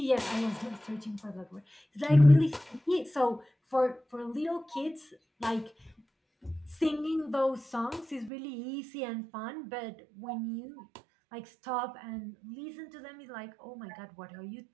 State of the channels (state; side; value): drops out; left; at 8.3 s